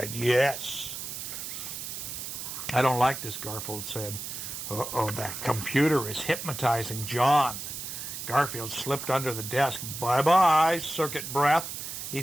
yes. I don't like this, Garfield said. Uh-oh, that computer is hypnotizing John. Garfield slipped under the desk. Bye-bye, circuit breath, he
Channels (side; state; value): right; noise; hiss, 7 dB below the sound